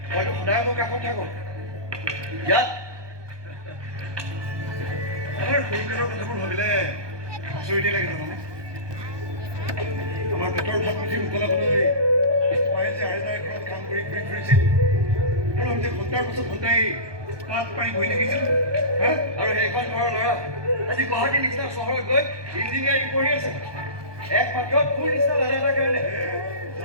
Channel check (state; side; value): late; left; 1.2 ms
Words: মইতো সদায় মোৰ কাষত থাকোঁ ইয়াত আমাৰ সৰুকালৰ কথাবোৰ ভাবিলে আচৰিতে লাগে জানানে আমাৰ পেটৰ ভাত মুঠি উতলাবলৈ মায়ে যে আইতাৰ ঘৰত কাম কৰি ঘূৰি ফুৰিছিল আৰু আমি যে ঘণ্টাৰ পিছত ঘণ্টাই তাত পাই বহি থাকিছিলোঁ আৰু সেইখন ঘৰৰ ল'ৰা আজি গুৱাহাটীৰ নিচিনা চহৰত গৈ ইঞ্জিনিয়াৰিং পঢ়ি আছে একমাত্ৰ তোৰ নিচিনা ল'ৰা এটাৰ কাৰণে